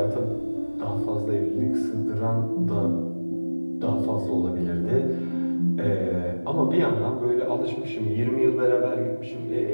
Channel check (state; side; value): inverted; both; correlation -1.00